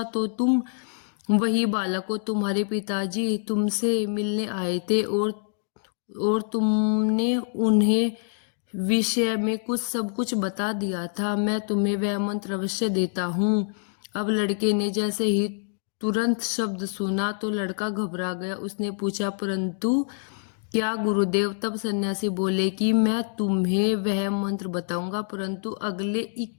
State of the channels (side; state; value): right; silent; digital silence